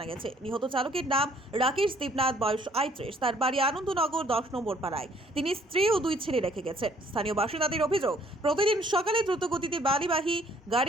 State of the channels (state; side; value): normal; both; correlation 0.62